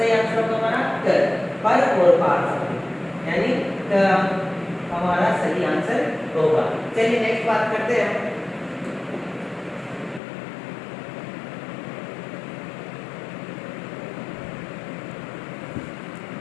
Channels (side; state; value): right; drops out; at 10.2 s